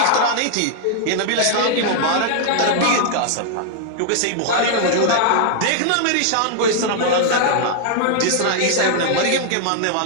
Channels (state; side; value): different; both; correlation 0.00